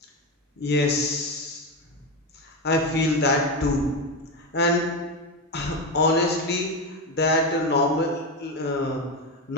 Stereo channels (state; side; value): normal; both; correlation 0.15